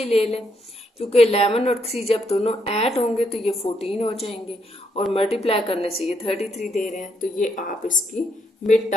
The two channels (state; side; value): normal; both; correlation 0.76